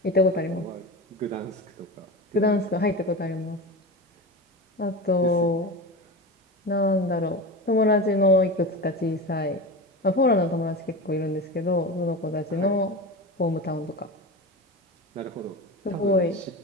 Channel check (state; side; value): normal; both; correlation 0.26